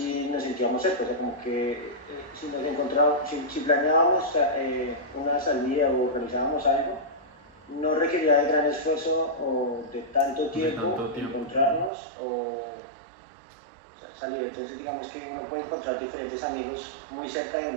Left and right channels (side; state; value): left; drops out; at 11.9 s